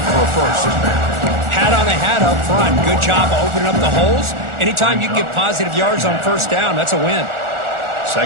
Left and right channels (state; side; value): late; left; 1.4 ms